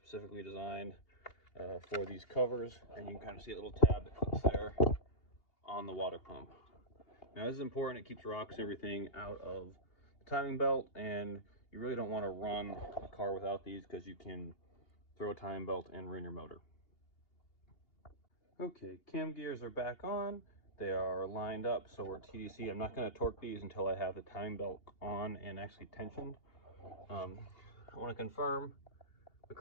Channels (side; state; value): right; late; 2.8 ms